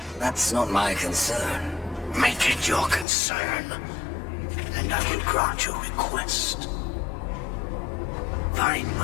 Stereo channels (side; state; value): right; drops out; at 3.1 s